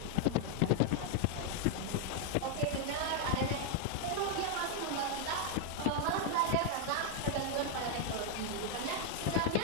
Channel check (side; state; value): both; different; correlation 0.00